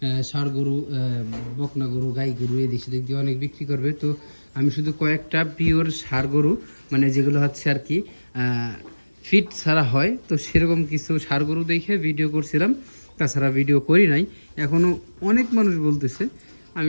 ষাঁড় গরু, বকনা গরু, গাই গরু এদিক সেদিক দিয়ে অনেক বিক্রি করবে। তো আমি শুধু কয়েকটা পিওর ষাঁড় গরু, মানে যেগুলো হচ্ছে আর কি ফিট ছাড়া হয়, তো সেরকম কিছু ষাঁড় গরু দেখে ভিডিও করছিলাম। তাছাড়া ভিডিও করি নাই। এখনও অনেক মানুষ বলতেছে।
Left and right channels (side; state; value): both; inverted; correlation -1.00